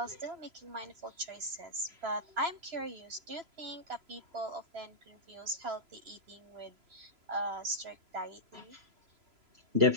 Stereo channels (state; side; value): late; left; 3.0 ms